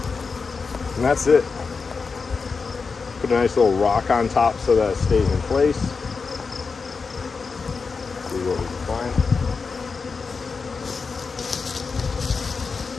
that's it. Put a nice little rock on top so that it stays in place. See what we can find.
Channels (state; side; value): quieter; right; 4.8 dB